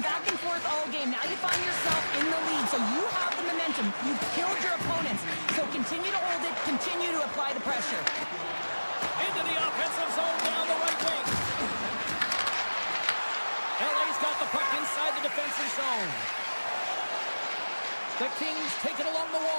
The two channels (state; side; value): inverted; both; correlation -1.00